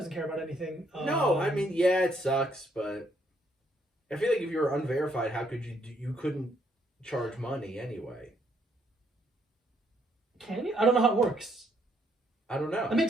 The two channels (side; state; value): both; normal; correlation 0.71